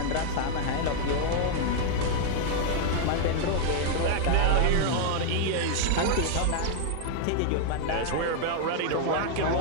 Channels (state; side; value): different; both; correlation 0.00